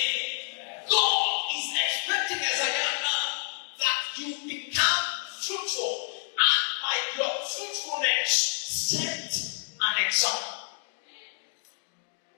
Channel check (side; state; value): right; silent; 57 dB below the other